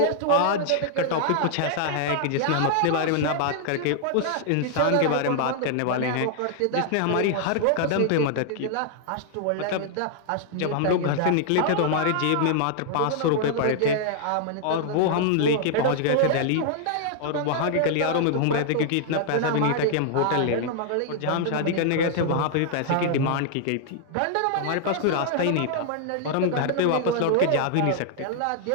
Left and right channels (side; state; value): both; different; correlation -0.01